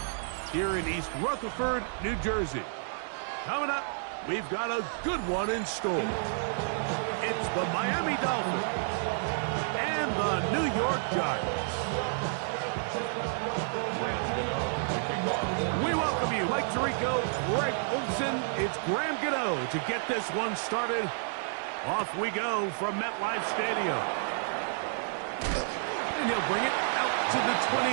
here in East Rutherford, New Jersey. Coming up, we've got a good one in store. It's the Miami Dolphins and the New York Giants. We welcome you, Mike Tirico, Greg Olson. It's Graham Gano to get this one started. Off we go from MetLife Stadium. And he'll bring it out to the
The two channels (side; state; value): left; silent; digital silence